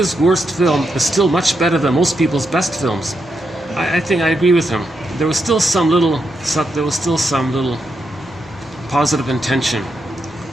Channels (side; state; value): both; normal; correlation 0.83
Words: worst film is still much better than most people's best films. I think I agree with him. There was still some little positive intention.